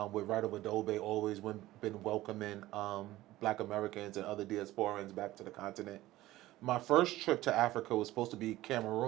with Right Over Dobe, always been welcoming Black Americans and other diasporans back to the continent. My first trip to Africa was supposed to be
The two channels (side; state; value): left; quieter; 16.5 dB